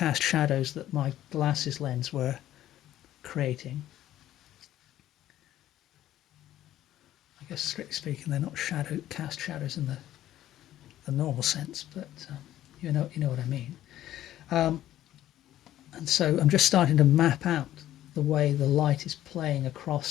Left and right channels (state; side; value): quieter; right; 13.0 dB